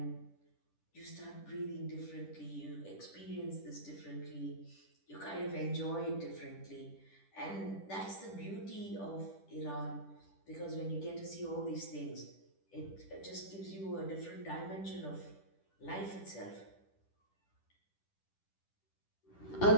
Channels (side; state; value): right; late; 10 ms